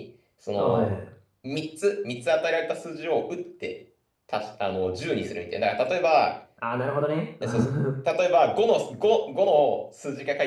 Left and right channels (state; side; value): identical; both; correlation 1.00